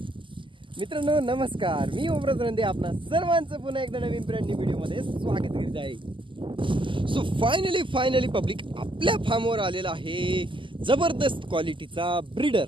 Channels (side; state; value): left; late; 0.25 ms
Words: मित्रांनो नमस्कार, मी ओमराज रंदे आपणा सर्वांचं पुन्हा एकदा नवीन ब्रँड न्यू व्हिडिओमध्ये स्वागत करीत आहे। सो फायनली पब्लिक आपल्या फार्मवर आलेला आहे जबरदस्त क्वालिटीचा ब्रीडर।